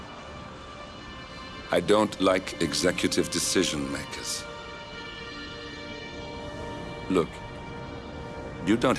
I don't like executive decision makers. Look, you don't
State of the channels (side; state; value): both; identical; correlation 1.00